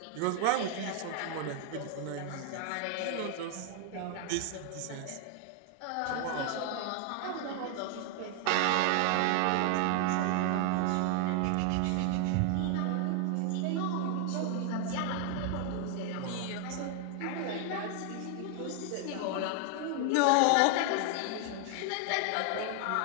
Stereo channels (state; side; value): different; both; correlation 0.00